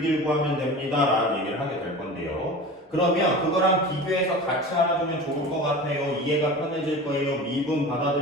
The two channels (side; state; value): both; normal; correlation 0.34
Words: 구하면 됩니다 라는 얘기를 하게 될 건데요. 그러면 그거랑 비교해서 같이 알아두면 좋을 것 같아요. 이해가 편해질 거예요. 미분